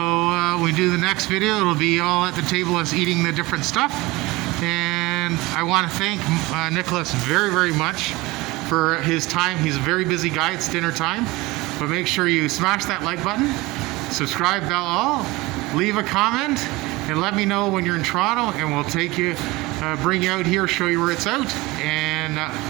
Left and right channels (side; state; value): left; quieter; 21.4 dB